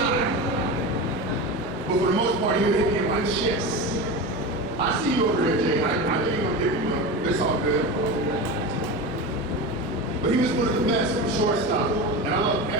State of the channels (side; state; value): both; normal; correlation 0.25